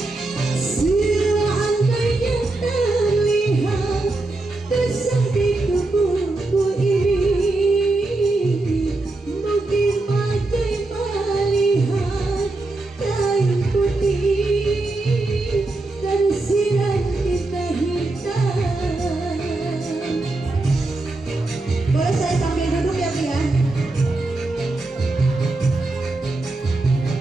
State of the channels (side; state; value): left; quieter; 3.0 dB